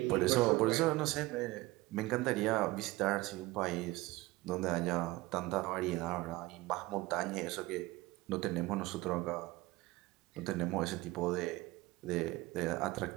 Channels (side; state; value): left; quieter; 20.0 dB